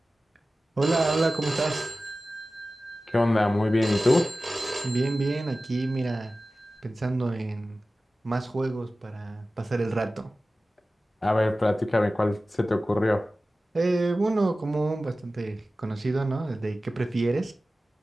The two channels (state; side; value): normal; both; correlation 0.96